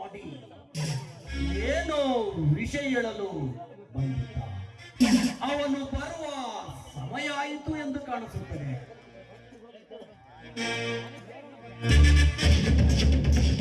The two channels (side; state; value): both; identical; correlation 1.00